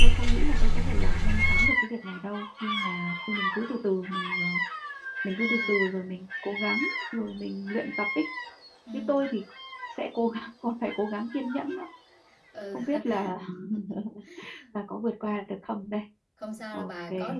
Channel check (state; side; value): identical; both; correlation 1.00